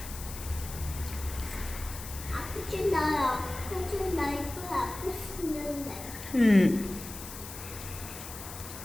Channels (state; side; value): noise; left; hiss, 11 dB below the sound